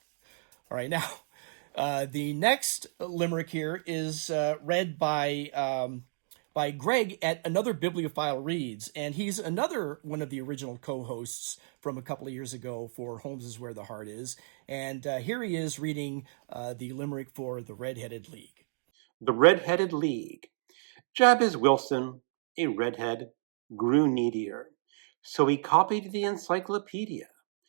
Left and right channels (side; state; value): left; silent; digital silence